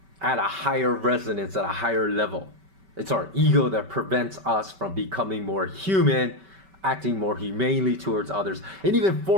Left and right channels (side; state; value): left; late; 5.2 ms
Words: at a higher resonance, at a higher level. It's our ego that prevents us from becoming more human, acting more humanely towards others, and even